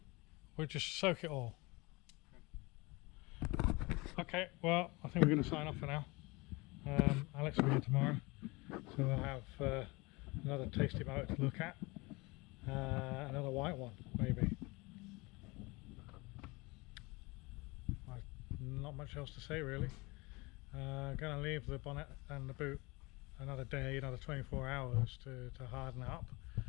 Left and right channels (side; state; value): right; quieter; 24.9 dB